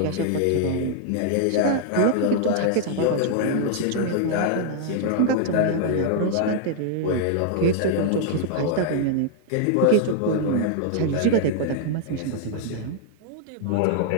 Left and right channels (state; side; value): different; both; correlation -0.01